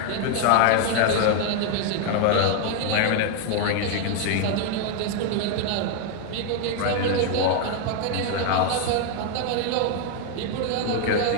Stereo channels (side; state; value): both; different; correlation 0.00